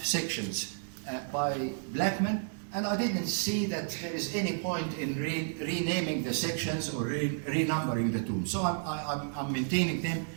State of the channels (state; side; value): silent; left; digital silence